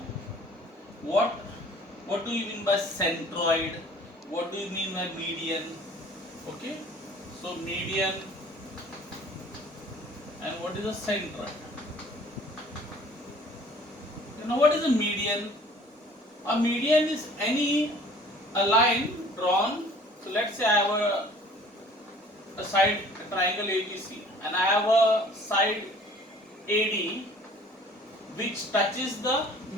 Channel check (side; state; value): both; normal; correlation 0.51